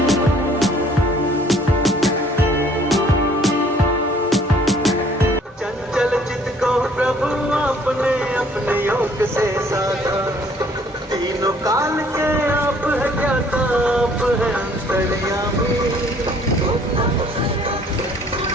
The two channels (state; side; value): normal; both; correlation 0.59